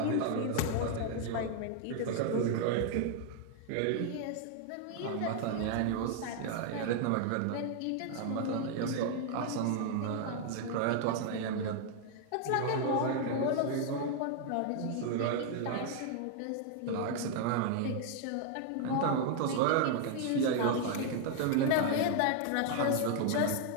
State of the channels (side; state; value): both; different; correlation 0.00